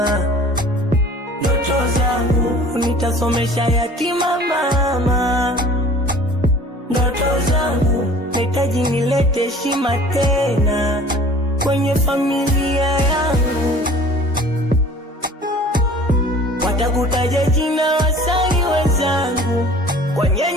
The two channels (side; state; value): both; normal; correlation 0.47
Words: ndoto zangu nitasomesha yatima mama, ndoto zangu nitaji nilete heshima tena kwenye familia yangu. Watakutaja jina wasanii wenzangu kwenye